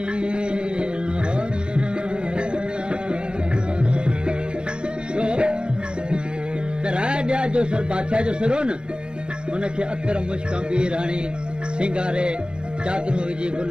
राजा जो सिर बादशाह जो सिर हो न हुनखे अतर मुश्क बीर हणी सिंगारे चादरूं विझी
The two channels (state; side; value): late; left; 0.052 ms